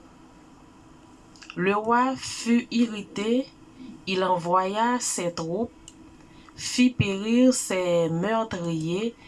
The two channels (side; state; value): both; identical; correlation 1.00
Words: Le roi fut irrité, il envoya ses troupes, fit périr ses meurtriers